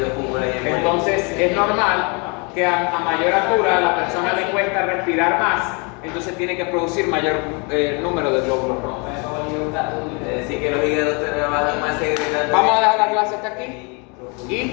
de fútbol ahí en Entonces es normal que a mayor altura a la persona le cuesta respirar más, entonces tiene que producir mayor número de glóbulos rojos. Es decir, que los hígados trabajan más segregando. Vamos a dejar la clase hasta aquí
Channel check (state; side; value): quieter; right; 32.5 dB